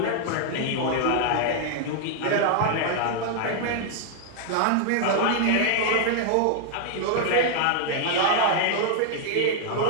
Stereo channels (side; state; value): both; different; correlation 0.00